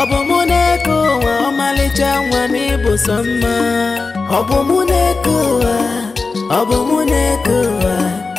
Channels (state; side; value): quieter; right; 4.1 dB